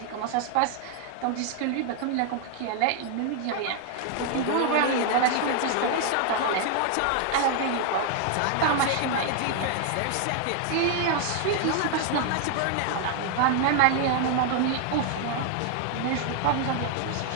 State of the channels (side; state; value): both; different; correlation 0.00